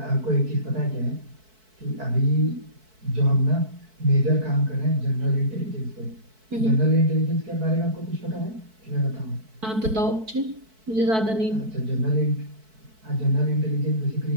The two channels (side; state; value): left; late; 4.6 ms